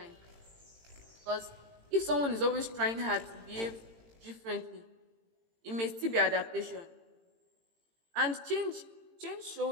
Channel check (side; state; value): left; late; 18 ms